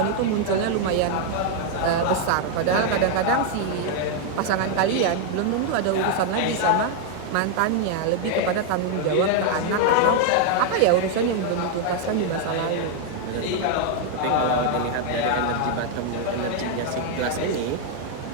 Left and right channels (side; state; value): both; different; correlation 0.00